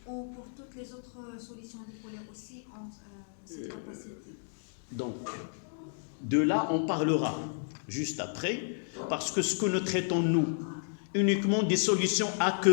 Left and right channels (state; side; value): silent; right; digital silence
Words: ou pour toutes les autres solutions dipolaires aussi ont cette capacité? Donc, de là, on parlera juste après, parce que ce que nous traitons, nous, uniquement des solutions